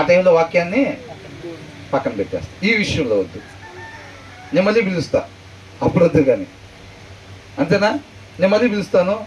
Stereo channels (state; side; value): identical; both; correlation 1.00